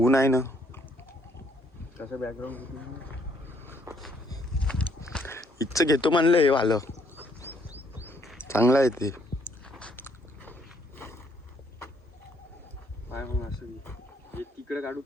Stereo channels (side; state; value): both; normal; correlation 0.68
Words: आहे ना. कसं बॅकग्राऊंड इथचं घेतो म्हणलं. हे वालं चांगलं आहे ते. इकडे काढू